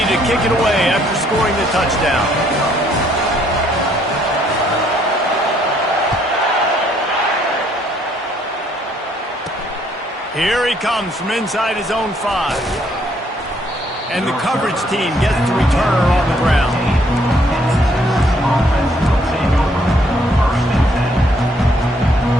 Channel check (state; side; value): normal; both; correlation 0.67